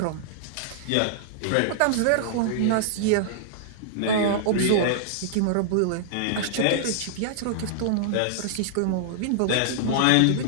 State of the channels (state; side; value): different; both; correlation -0.01